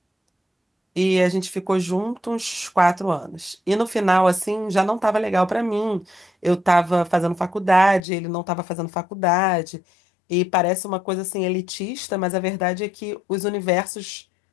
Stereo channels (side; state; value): right; drops out; at 8.0 s